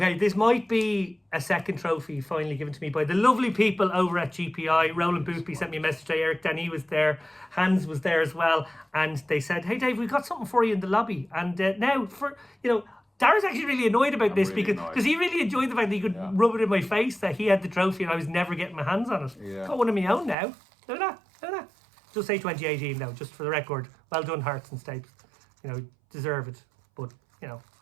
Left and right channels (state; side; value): drops out; left; at 20.4 s